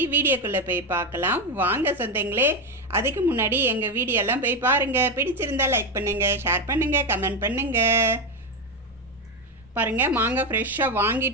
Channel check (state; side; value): normal; both; correlation 0.11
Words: வீடியோக்குள்ளே போய் பார்க்கலாம். வாங்க சொந்தங்களே. அதுக்கு முன்னாடி எங்கள் வீடியோலாம் போய் பாருங்கள். பிடிச்சிருந்தா லைக் பண்ணுங்கள், ஷேர் பண்ணுங்கள், கமெண்ட் பண்ணுங்கள். பாருங்கள், மாங்காய் ஃப்ரெஷ்ஷாக